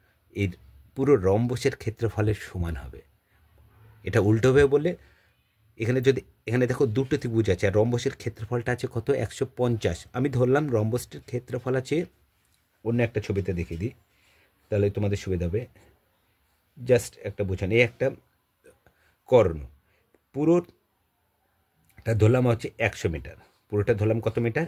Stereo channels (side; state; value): both; identical; correlation 1.00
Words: এর পুরো রম্বসের ক্ষেত্রফলের সমান হবে। এটা উল্টোভাবে বললে, এখানে দেখো দুটো ত্রিভুজ আছে আর রম্বসের ক্ষেত্রফলটা আছে কত 150। আমি ধরলাম রম্বসটির ক্ষেত্রফল আছে, অন্য একটা ছবিতে দেখিয়ে দিই তাহলে তোমাদের সুবিধা হবে। জাস্ট একটা বোঝান, এই একটা কর্ণ, পুরোটা ধরলাম হচ্ছে 100 মিটার, পুরোটা ধরলাম কত মিটার